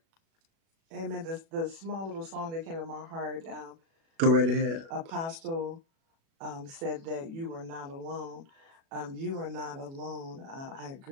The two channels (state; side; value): late; left; 36 ms